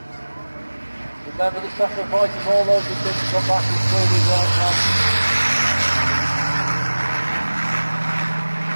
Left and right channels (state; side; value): inverted; both; correlation -1.00